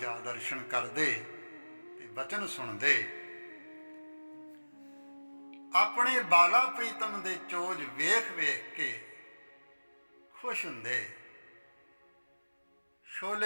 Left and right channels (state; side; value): inverted; both; correlation -1.00